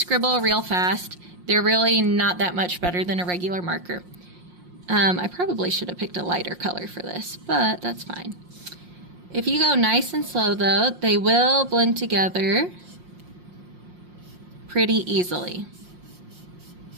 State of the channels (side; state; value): left; late; 5.6 ms